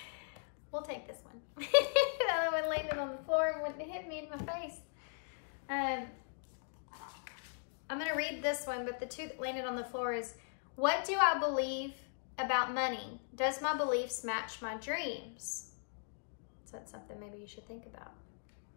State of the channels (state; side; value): silent; right; digital silence